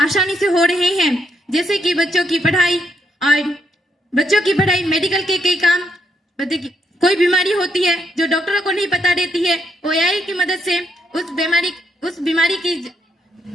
आसानी से हो रहे हैं, जैसे कि बच्चों की पढ़ाई, मेडिकल के कई काम। कोई बीमारी होती है जो डॉक्टरों को नहीं पता रहती है, वो एआई की मदद से उस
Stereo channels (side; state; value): both; normal; correlation 0.75